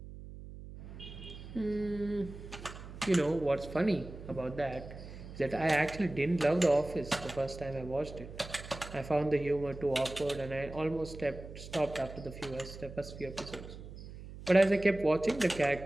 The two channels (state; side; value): noise; right; hum, 13 dB below the sound